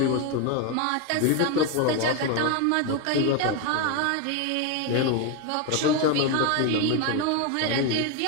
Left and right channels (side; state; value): both; different; correlation 0.02